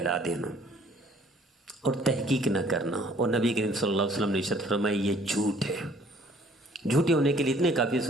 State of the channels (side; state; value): both; normal; correlation 0.58